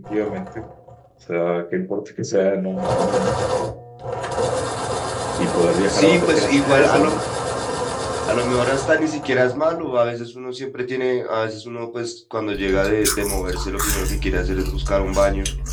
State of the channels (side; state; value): both; identical; correlation 1.00